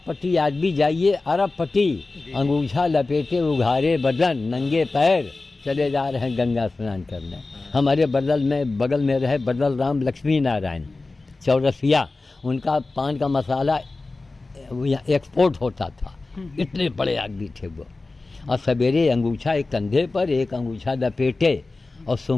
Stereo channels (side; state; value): right; quieter; 3.4 dB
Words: पट्टी, आज भी जाइए अरब पट्टी, अंगूछा लपेटे उघारे बदन नंगे पैर चले जा रहे हैं गंगा स्नान करने। हमारे बगल में रहे बदल राम लक्ष्मी नारायण चौरसिया, उनका पान का मसाला एक्सपोर्ट होता था, इतने बड़े आदमी थे वो। और सवेरे अंगूछा एक कंधे पर, एक अंगूछा लपेटे, और